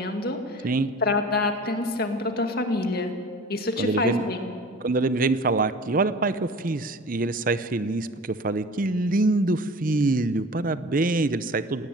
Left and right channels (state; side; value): normal; both; correlation 0.41